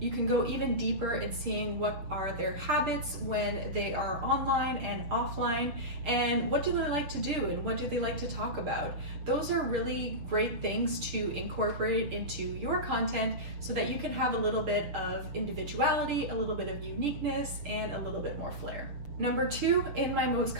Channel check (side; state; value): left; late; 6.9 ms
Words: can go even deeper in seeing what are their habits when they are online and offline, and what do they like to do and what do they like to talk about. Those are really great things to incorporate into your content so that you can have a little bit of individuality, a little bit of uniqueness, and a little bit more flair. Number 2 in my most